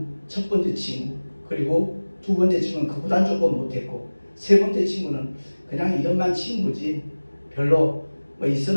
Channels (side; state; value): both; inverted; correlation -1.00